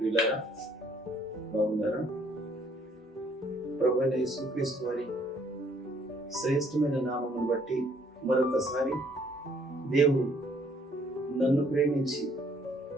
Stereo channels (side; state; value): both; normal; correlation 0.64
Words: ప్రియులారా, బాగున్నారా? ప్రభువైన యేసుక్రీస్తు వారి శ్రేష్టమైన నామమును బట్టి మరొకసారి దేవుడు నన్ను ప్రేమించి